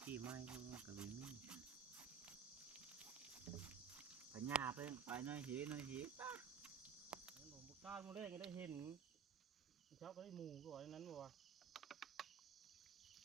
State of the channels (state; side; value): quieter; left; 7.0 dB